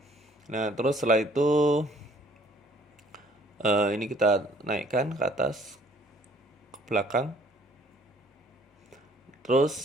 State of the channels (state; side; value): normal; both; correlation 0.59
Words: nah terus setelah itu ini kita naikkan ke atas, ke belakang.